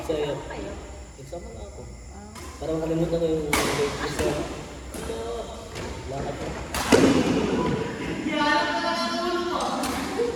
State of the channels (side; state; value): both; identical; correlation 1.00